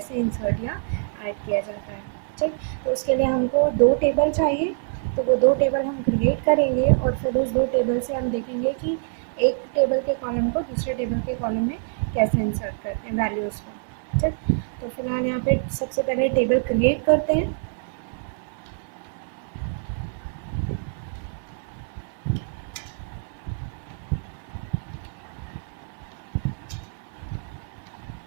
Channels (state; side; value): silent; left; 62 dB below the other